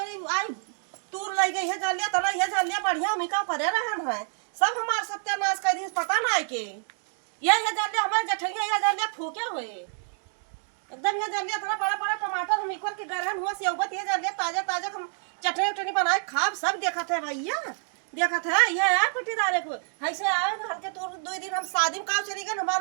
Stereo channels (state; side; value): silent; left; digital silence